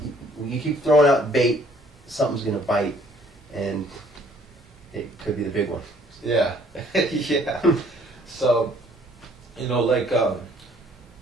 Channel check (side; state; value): both; normal; correlation 0.60